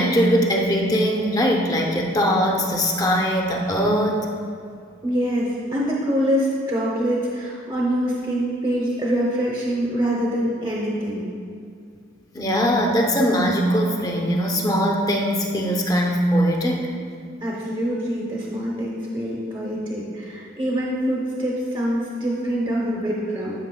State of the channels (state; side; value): normal; both; correlation 0.63